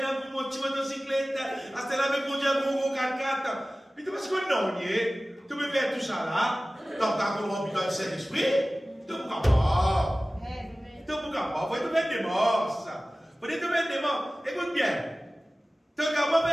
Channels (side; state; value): both; normal; correlation 0.97